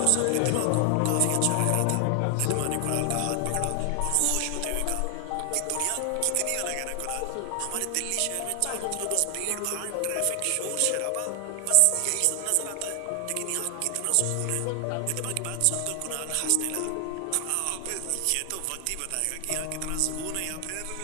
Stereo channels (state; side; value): different; both; correlation 0.00